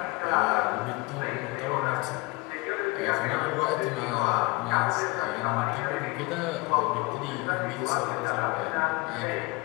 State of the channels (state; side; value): quieter; right; 25.1 dB